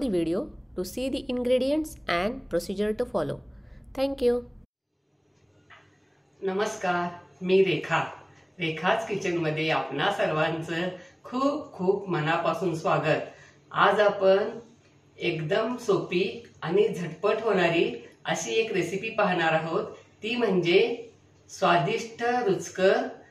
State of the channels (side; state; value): both; identical; correlation 1.00